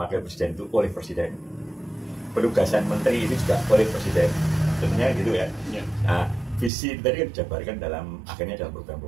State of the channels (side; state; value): left; drops out; at 6.7 s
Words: presiden itu oleh presiden. Penugasan menteri itu juga oleh presiden. Tentunya gitu ya. Nah, visi itu tadi kan dijabarkan akhirnya dalam